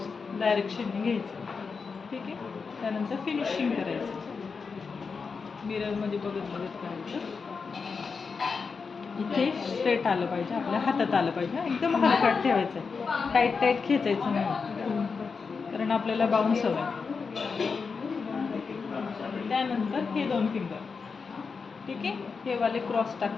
डायरेक्शनने घ्यायचं. ठीक आहे. त्यानंतर फिनिशिंग करायचं, मिररमध्ये बघत बघत करायचं. इथे स्ट्रेट आलं पाहिजे, आपल्या हातात आलं पाहिजे, एकदम हलकाट ठेवायचं आहे, टाईट टाईट खेचायचं नाही, कारण आपल्याला बाउन्स हवं आहे. त्यानंतर हे 2 फिंगर, ठीक आहे, हे वाले क्रॉस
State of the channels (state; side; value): quieter; right; 5.1 dB